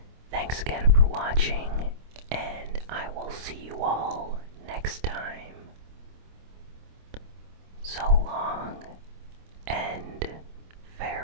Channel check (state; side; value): late; left; 26 ms